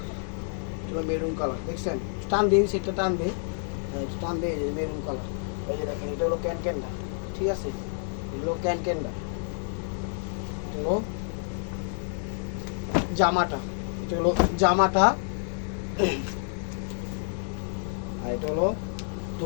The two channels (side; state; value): right; silent; 56 dB below the other